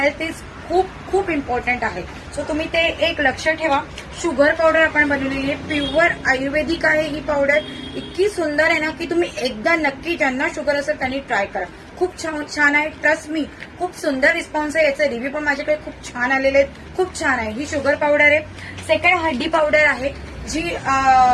इज खूप खूप इम्पॉर्टंट आहे. सो तुम्ही ते एक लक्ष ठेवा. शुगर पावडर आपण बनवलेली आहे, प्युअर आयुर्वेदिक आहे ही पावडर. इतकी सुंदर आहे ना की तुम्ही एकदा नक्की ज्यांना शुगर असेल त्यांनी ट्राय करा. खूप छान आहे, ट्रस्ट मी. खूप सुंदर रिस्पॉन्स आहे. याचे रिव्ह्यू पण माझ्याकडे खूप छान आलेले आहेत. खूप छान आहे. ही शुगर पावडर आहे. सेकंड हड्डी पावडर आहे, जी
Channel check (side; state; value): both; identical; correlation 1.00